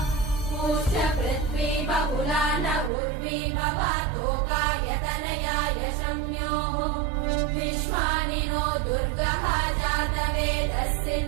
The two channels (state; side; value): drops out; left; at 2.9 s